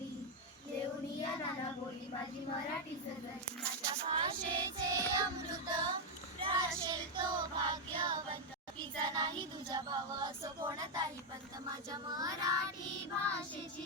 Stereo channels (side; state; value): both; normal; correlation 0.01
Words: देऊनिया नाना बोली माझी मराठी सजली. माझ्या भाषेचे अमृत राशेल तो भाग्यवंत. तिचा नाही तुझा भाव असो कोणताही पंत. माझ्या मराठी